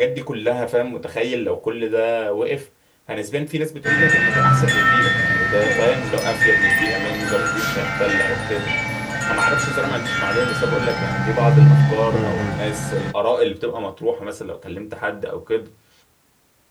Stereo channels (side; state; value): both; identical; correlation 1.00